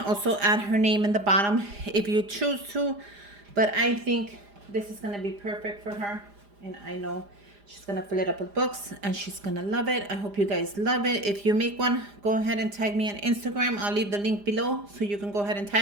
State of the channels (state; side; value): late; left; 4.9 ms